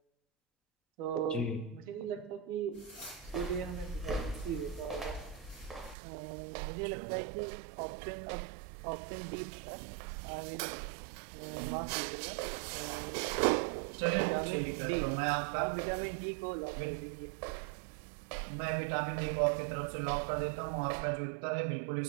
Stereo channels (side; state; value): left; drops out; at 6.0 s